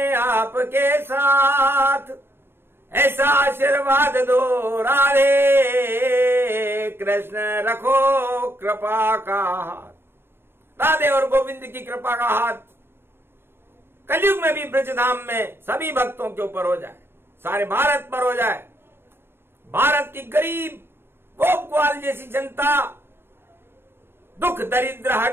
आपके साथ, ऐसा आशीर्वाद दो राधे कृष्ण, रखो कृपा का हाथ। राधे और गोविंद की कृपा का हाथ कलयुग में भी ब्रजधाम में सभी भक्तों के ऊपर हो जाए, सारे भारत पर हो जाए। भारत की गरीब गोप ग्वाल जैसी जनता, दुख दरिद्र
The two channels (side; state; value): left; late; 0.11 ms